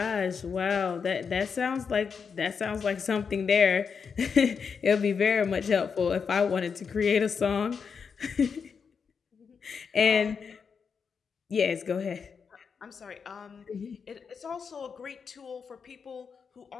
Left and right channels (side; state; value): right; quieter; 6.0 dB